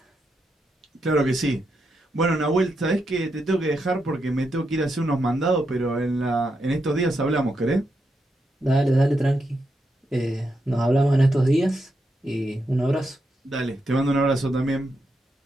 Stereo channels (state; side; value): normal; both; correlation 0.83